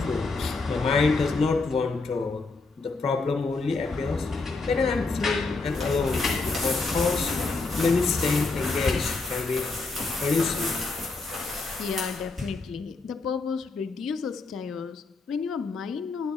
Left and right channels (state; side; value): quieter; right; 3.8 dB